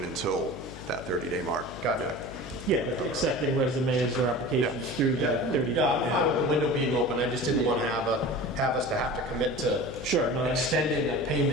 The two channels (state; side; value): noise; left; hum, 13 dB below the sound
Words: until that 30-day mark. Got it. Yeah, accepting resumes or applications through that 30 days. Yeah, I'm fine with the window being open. I just didn't want to have us to have to commit to extending a